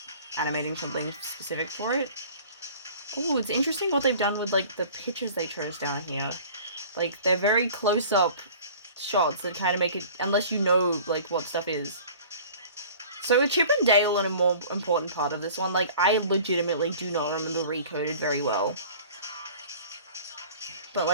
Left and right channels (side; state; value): both; inverted; correlation -0.46